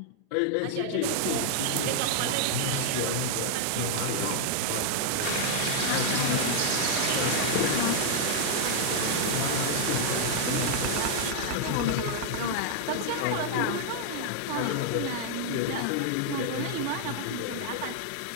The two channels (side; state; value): both; different; correlation -0.01